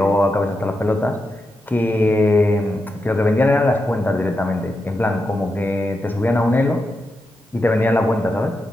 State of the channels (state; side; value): normal; both; correlation 0.87